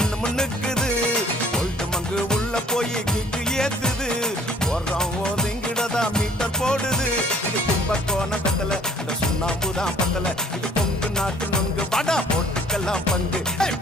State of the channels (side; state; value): both; normal; correlation 0.56